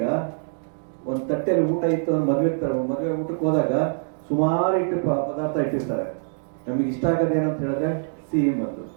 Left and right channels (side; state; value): left; silent; digital silence